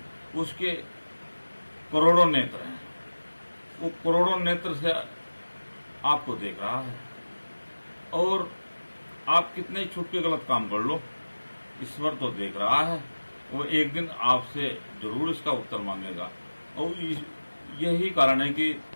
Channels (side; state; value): both; inverted; correlation -1.00